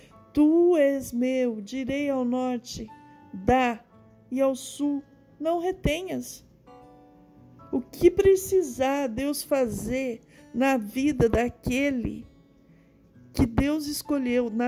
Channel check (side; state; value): both; identical; correlation 1.00